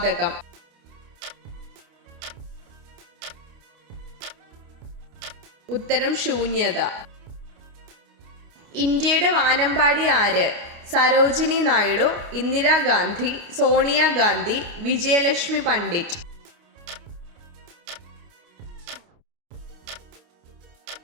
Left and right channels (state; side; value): late; left; 29 ms